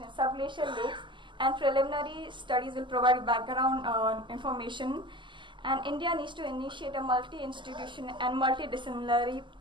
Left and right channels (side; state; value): left; late; 0.24 ms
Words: in subglacial lakes, and preliminary studies will provide background information. And India needs to initiate a multi-institution and